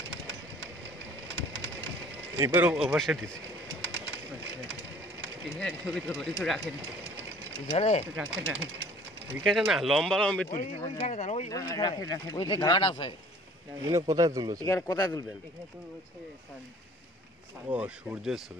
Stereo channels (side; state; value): both; normal; correlation 0.51